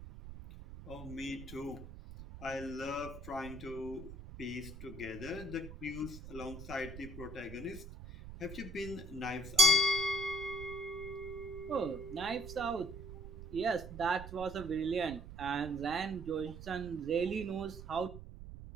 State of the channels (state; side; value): noise; right; rumble, 12 dB below the sound